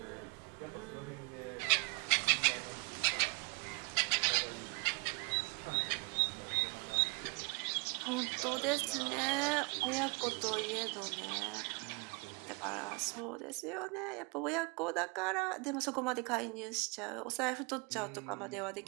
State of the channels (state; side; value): quieter; left; 31.4 dB